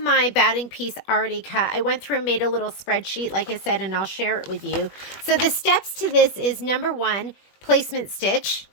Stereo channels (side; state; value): right; late; 21 ms